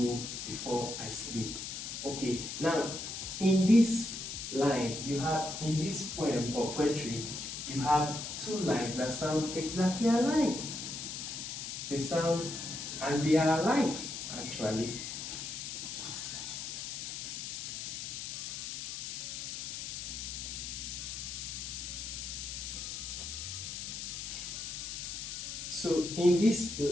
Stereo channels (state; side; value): noise; left; hiss, 6 dB below the sound